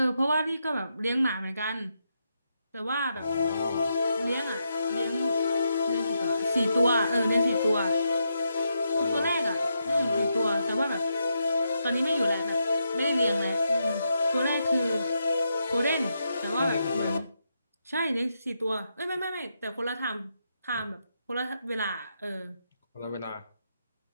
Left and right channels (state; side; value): inverted; both; correlation -0.82